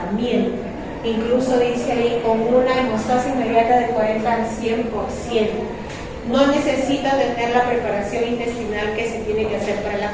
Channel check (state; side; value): identical; both; correlation 1.00